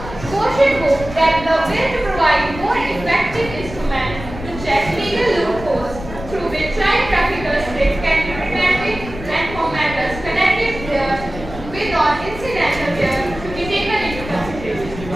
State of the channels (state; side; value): noise; left; rumble, 12 dB below the sound